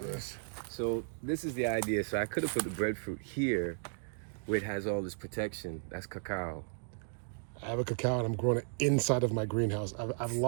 Nice. So this is the idea. So I could have put the breadfruit here, where it has all this protection. That's cacao. I have a cacao and I'm growing it inside of my greenhouse. I've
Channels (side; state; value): left; silent; digital silence